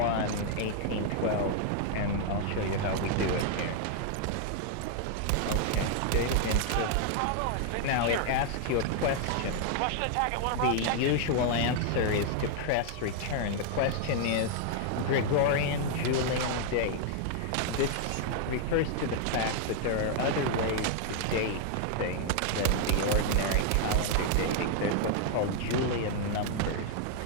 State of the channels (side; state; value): both; different; correlation 0.00